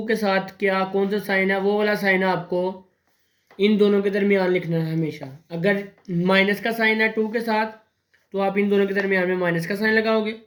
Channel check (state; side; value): identical; both; correlation 1.00